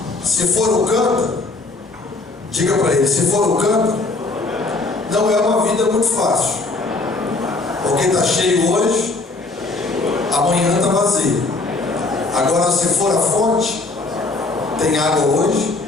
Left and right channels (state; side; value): quieter; right; 3.4 dB